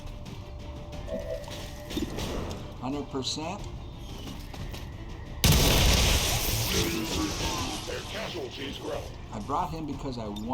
%. Their casualties grow. I brought him because I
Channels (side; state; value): both; identical; correlation 1.00